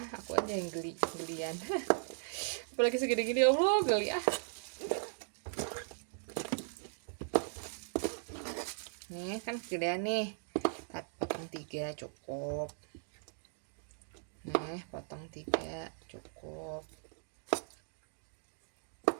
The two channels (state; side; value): silent; left; digital silence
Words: aku aja yang gelian. Apalagi segede gini, Allah geli ah. Nih kan gedean nih, potong 3 cukup. Nih potong 3 cukup.